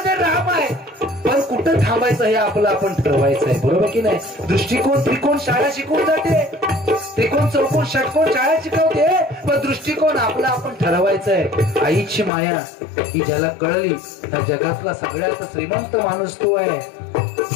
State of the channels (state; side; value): drops out; right; at 12.3 s